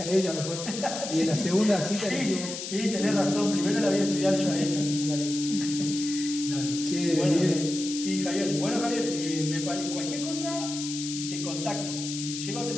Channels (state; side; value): noise; left; hiss, 7 dB below the sound